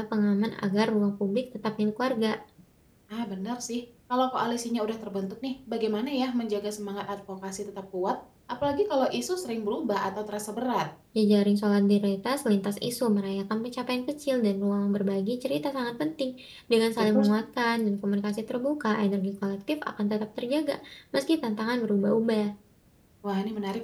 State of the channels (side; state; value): both; identical; correlation 1.00